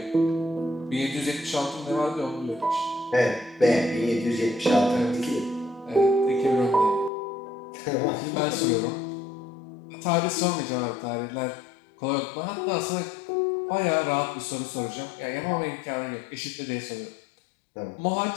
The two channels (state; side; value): drops out; right; at 7.1 s